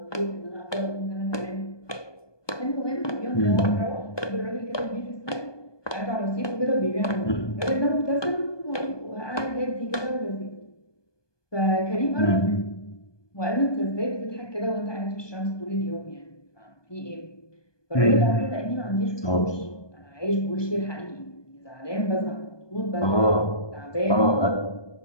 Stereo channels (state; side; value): late; right; 1.2 ms